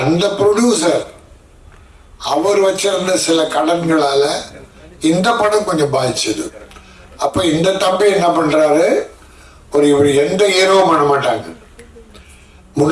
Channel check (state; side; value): identical; both; correlation 1.00